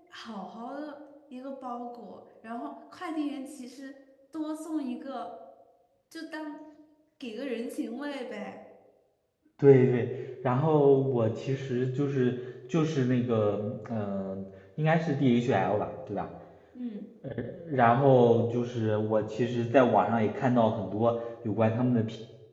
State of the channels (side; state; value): both; identical; correlation 1.00